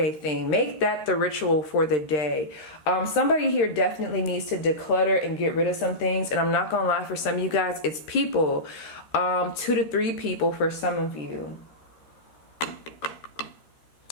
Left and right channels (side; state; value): right; late; 13 ms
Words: thing. Make that the ritual for the day. Somebody here definitely needs to declutter and get rid of some things, and I'm not gonna lie, for some of you guys, it's people. 2 to 3 people for some of you.